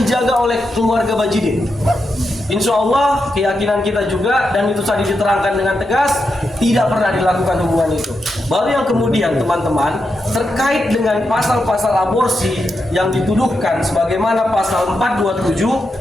oleh keluarga Bajidi. Insya Allah keyakinan kita juga, dan itu tadi diterangkan dengan tegas, tidak pernah dilakukan hubungan itu. Baru yang kemudian teman-teman terkait dengan pasal-pasal aborsi yang dituduhkan sebagaimana pasal 427,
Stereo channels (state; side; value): normal; both; correlation 0.86